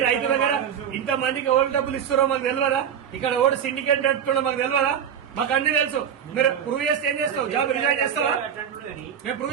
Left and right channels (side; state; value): left; quieter; 8.5 dB